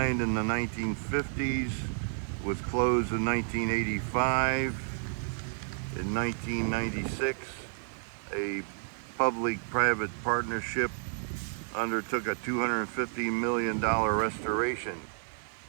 in the 1950s, was closed in 1985. In 1996, a public-private partnership undertook a $250 million restoration.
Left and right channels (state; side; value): silent; left; digital silence